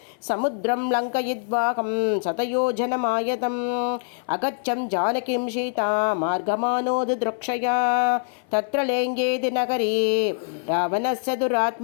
समुद्रं लङ्कयित्वाहं शतयोजनमायतम् अगच्छं जानकीं सीता मार्गमानोदृक्षया तत्र लेङ्गेति नगरे रावणस्य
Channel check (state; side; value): silent; right; 56 dB below the other